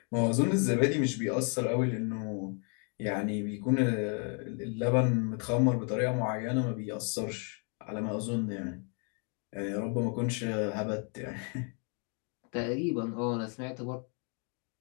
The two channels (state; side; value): quieter; right; 39.4 dB